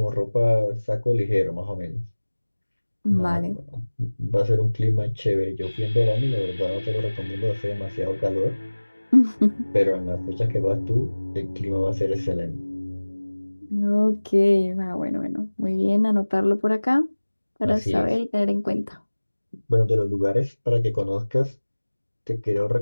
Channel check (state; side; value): inverted; both; correlation -1.00